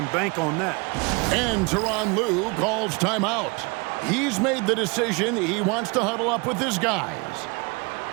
bank on that. And Tyronn Lue calls timeout. He's made the decision. He wants to huddle up with his guys.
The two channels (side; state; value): left; quieter; 29.3 dB